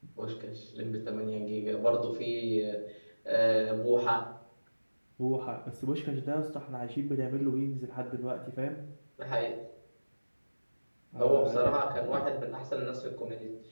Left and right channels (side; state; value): both; inverted; correlation -1.00